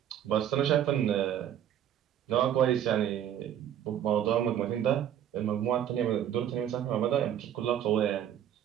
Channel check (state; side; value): quieter; left; 10.3 dB